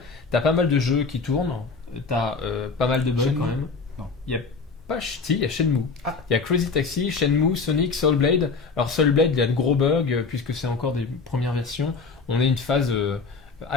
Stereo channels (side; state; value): right; quieter; 4.5 dB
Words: Tu as pas mal de jeux qui tournent, tu as pas mal de bugs Shenmue quand même. Non. Il y a pas si, il y a Shenmue. Ah. Il y a Crazy Taxi, Shenmue, Sonic, Soul Blade. Alors Soul Blade, il y a de gros bugs puisque c'est encore des premières versions. On est une phase